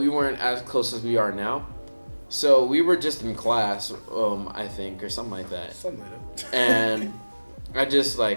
weren't as close as we are now. So we were just in class, I think, or something like that. Something like that. And I just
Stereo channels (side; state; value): both; inverted; correlation -1.00